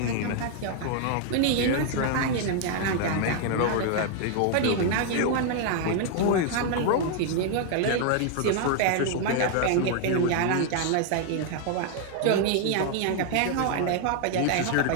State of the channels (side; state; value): both; different; correlation 0.00